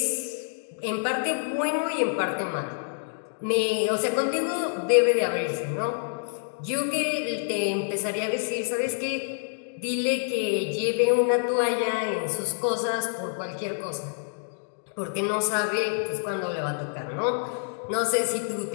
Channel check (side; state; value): right; silent; digital silence